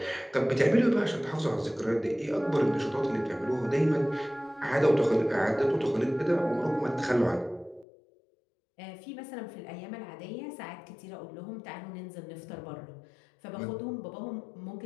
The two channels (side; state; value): right; drops out; at 7.9 s